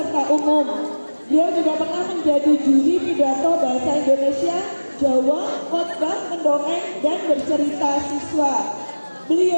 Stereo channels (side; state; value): both; inverted; correlation -1.00